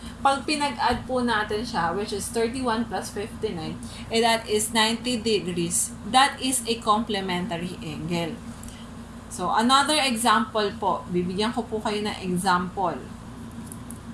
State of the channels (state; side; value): identical; both; correlation 1.00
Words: Pag pinag-add po natin siya, which is 31 plus 59, that is 90 degrees. That is a complementary angle. So, another example po. Bibigyan ko po kayo ng example.